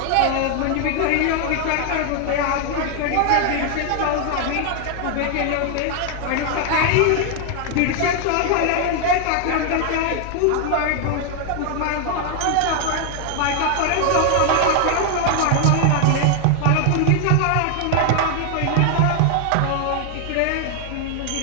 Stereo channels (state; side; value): different; both; correlation 0.00